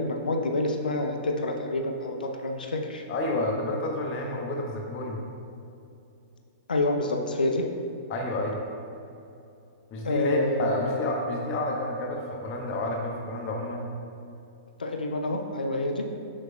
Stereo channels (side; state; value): both; inverted; correlation -0.40